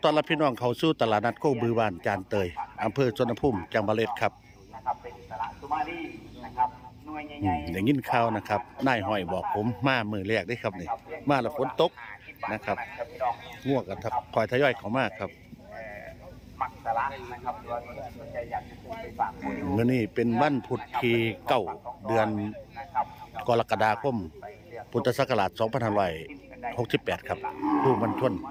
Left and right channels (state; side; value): identical; both; correlation 1.00